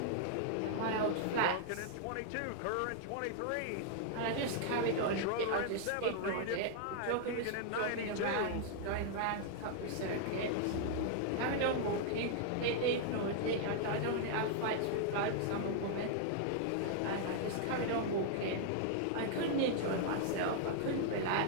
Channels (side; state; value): both; different; correlation -0.01